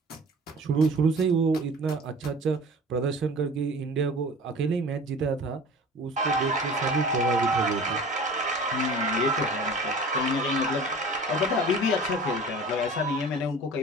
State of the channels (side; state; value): both; normal; correlation 0.42